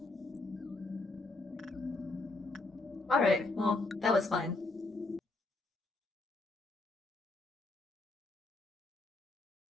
Alright, well, that was fun.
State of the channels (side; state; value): right; quieter; 3.2 dB